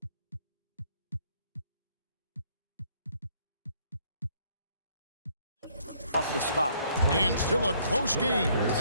Off the spot. And still a close game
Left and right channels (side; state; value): both; inverted; correlation -0.65